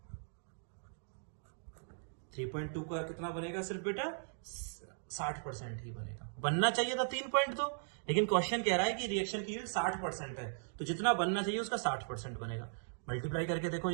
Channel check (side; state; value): left; silent; digital silence